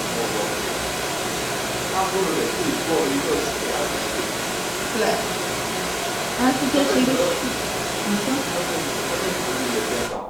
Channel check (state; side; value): noise; left; rumble, 23 dB below the sound